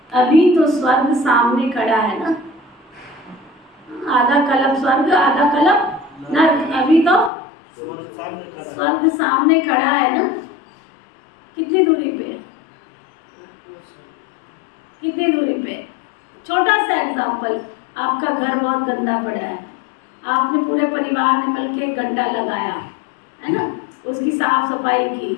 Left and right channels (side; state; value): right; drops out; at 7.3 s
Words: अभी तो स्वर्ग सामने खड़ा है ना, आधा कल्प स्वर्ग आधा कल्प नर्क। अभी तो स्वर्ग सामने खड़ा है ना। कितनी दूरी पे? कितनी दूरी पे? छोटा सा एग्जाम्पल, आपका घर बहुत गंदा पड़ा है, आपने पूरे परिवार ने मिलकर एक घंटा लगाया, है ना, उसकी साफ सफाई